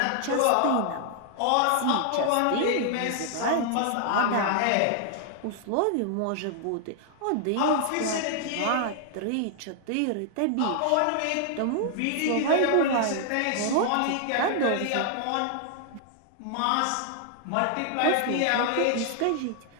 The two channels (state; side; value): different; both; correlation 0.00